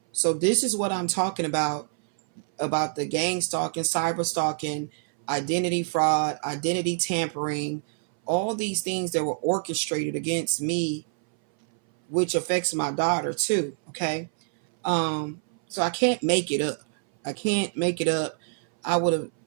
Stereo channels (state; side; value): silent; left; 60 dB below the other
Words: So this is what I'm talking about the gang stalking, cyber stalking, identity fraud, identity tampering, all these things that were orchestrated against me, which affects my daughter too. Okay. So I can't make it up. I would have